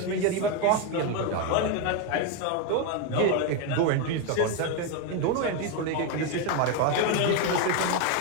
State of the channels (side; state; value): both; different; correlation 0.02